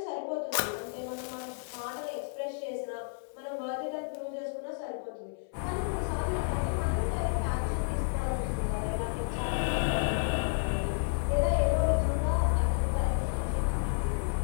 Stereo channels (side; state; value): right; silent; 57 dB below the other